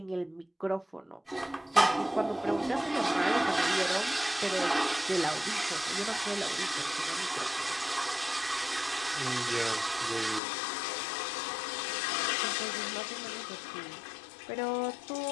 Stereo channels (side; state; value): right; drops out; at 10.4 s